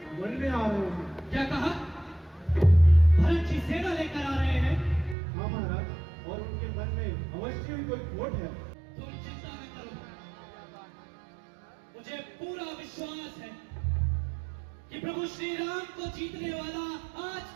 वन में आ रहे हैं। क्या कहा? भरत जी सेना लेकर आ रहे हैं? हाँ महाराज, और उनके मन में अवश्य ही कोई खोट है। तुम चिंता न करो, मुझे पूरा विश्वास है कि प्रभु श्री राम को जीतने वाला आज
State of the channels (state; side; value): drops out; left; at 5.2 s